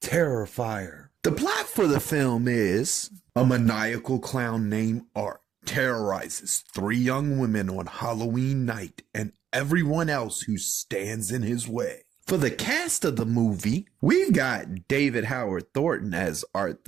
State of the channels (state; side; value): quieter; left; 9.3 dB